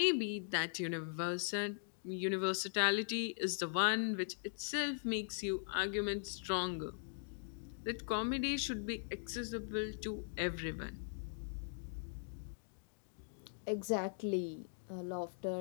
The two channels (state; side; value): silent; right; digital silence